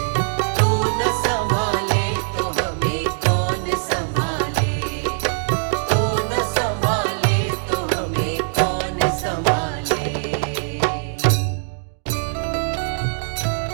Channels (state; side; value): silent; left; 65 dB below the other